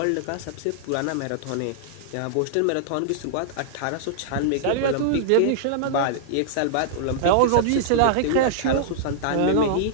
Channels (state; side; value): different; both; correlation -0.01